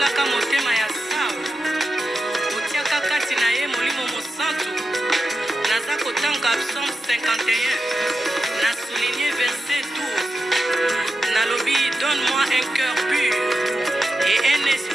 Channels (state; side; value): normal; both; correlation 0.90